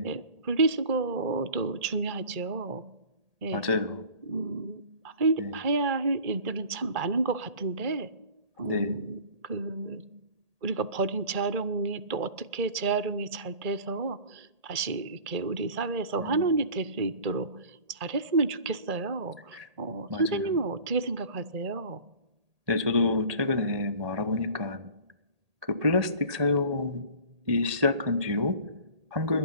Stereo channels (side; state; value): left; late; 1.8 ms